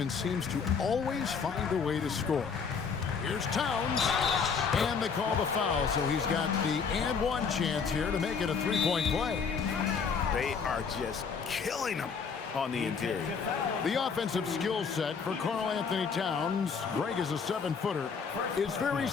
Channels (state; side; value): quieter; right; 5.8 dB